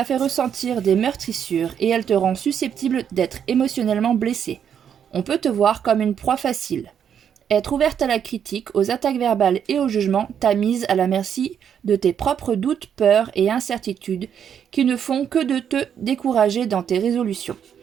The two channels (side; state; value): left; quieter; 8.4 dB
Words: fait ressentir des meurtrissures et elle te rend susceptible d'être émotionnellement blessé. On peut te voir comme une proie facile. Être ouverte à la critique, aux attaques verbales et au jugement t'a mise à la merci de tes propres doutes, peurs et incertitudes qui ne font que de te décourager dans tes résolutions.